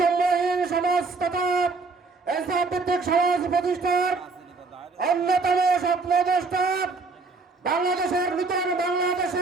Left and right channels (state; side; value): quieter; left; 4.1 dB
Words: সমাজ তথা ইসলাম ভিত্তিক সমাজ প্রতিষ্ঠার অন্যতম স্বপ্নদ্রষ্টা, বাংলাদেশের নূতন